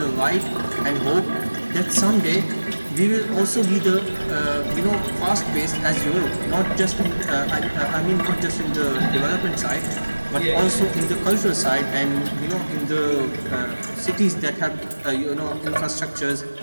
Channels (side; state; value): both; inverted; correlation -1.00